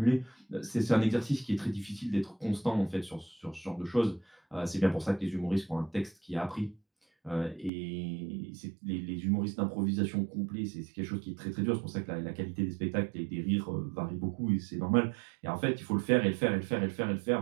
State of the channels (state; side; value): drops out; left; at 7.7 s